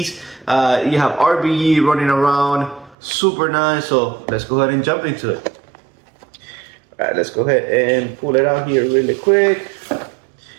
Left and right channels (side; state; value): left; drops out; at 3.0 s